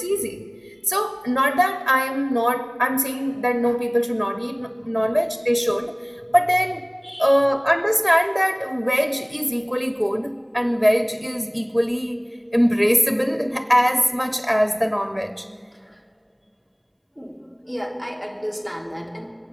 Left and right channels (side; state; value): both; identical; correlation 1.00